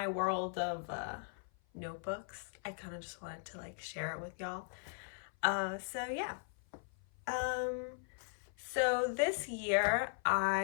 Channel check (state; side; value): silent; right; 52 dB below the other